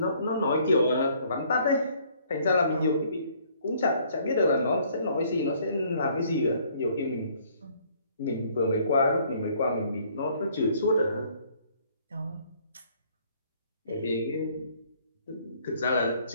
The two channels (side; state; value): both; inverted; correlation -0.62